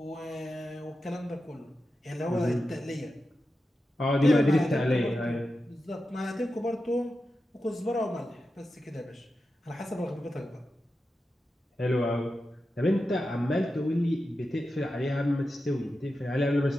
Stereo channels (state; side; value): normal; both; correlation 0.90